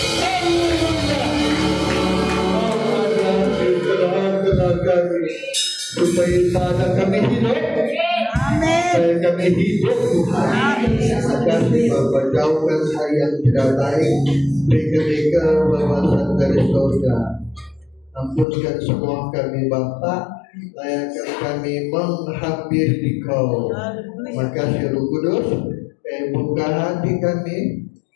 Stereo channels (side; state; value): right; drops out; at 18.4 s